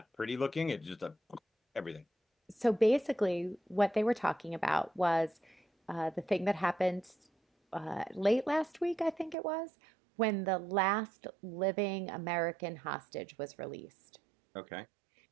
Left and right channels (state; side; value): drops out; left; at 9.3 s